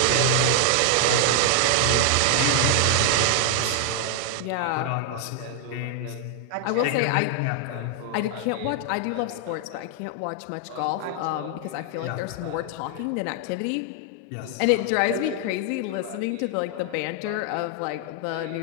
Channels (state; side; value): different; both; correlation 0.00